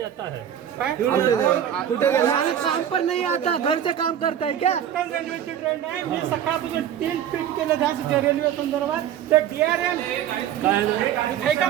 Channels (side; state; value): left; quieter; 10.0 dB